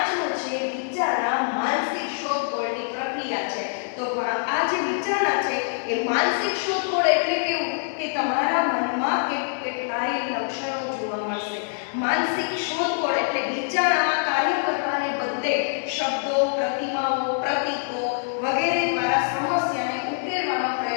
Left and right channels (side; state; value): right; silent; digital silence